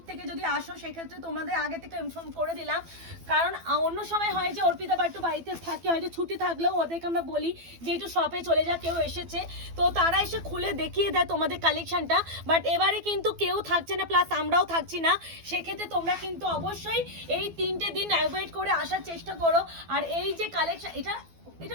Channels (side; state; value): left; late; 12 ms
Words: থেকে যদি আসো সেক্ষেত্রে তোমাদের আগে থেকে ইনফর্ম করে দিলাম, কারণ অন্য সময় হয় যে অর্পিতা বা একটু বাড়িতে থাকে, হয়তো ছুটি থাকলেও ওদেরকে আমরা বলি যে একটু শপে চলে যা, কেউ এসেছে তো তারা এসে খুলে দেখিয়ে দেয় তোমাদের কালেকশনটা। বাট এবারে কিন্তু কেউ থাকছে না, প্লাস আমরাও থাকছি না, সেক্ষেত্রে তোমরা কিন্তু অবশ্যই এই 3টে দিন অ্যাভয়েড করে আসার চেষ্টা করো। আর এই যে কালেকশন, এটা